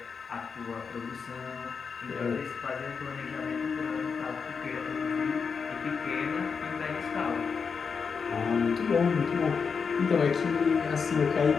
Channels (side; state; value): right; quieter; 5.7 dB